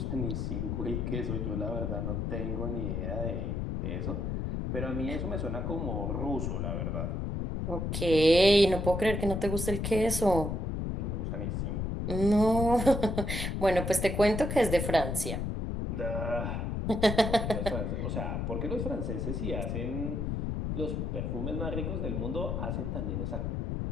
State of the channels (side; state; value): left; noise; rumble, 1 dB below the sound